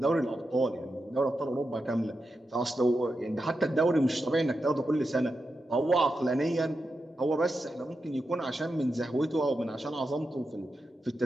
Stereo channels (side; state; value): both; normal; correlation 0.88